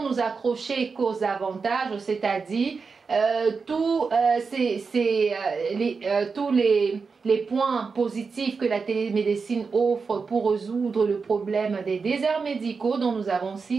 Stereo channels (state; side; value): quieter; left; 5.0 dB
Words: accrocher qu'aux avantages, c'est-à-dire tous les points positifs que la télémédecine offre pour résoudre le problème des déserts médicaux dont nous avons